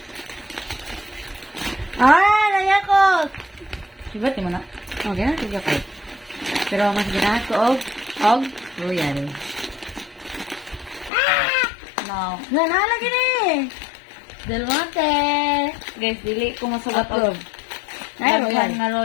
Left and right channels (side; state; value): right; drops out; at 11.1 s